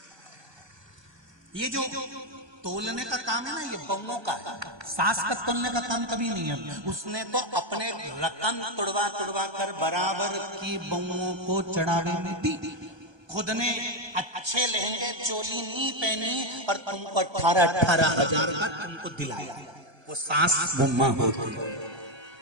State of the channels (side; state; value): left; late; 1.3 ms